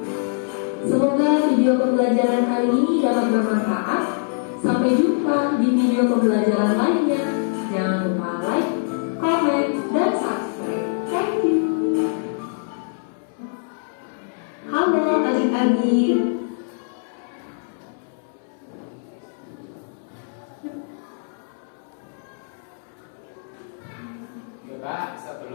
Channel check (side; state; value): right; silent; 63 dB below the other